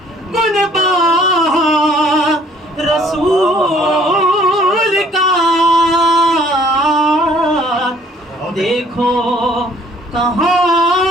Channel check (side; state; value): both; normal; correlation 0.58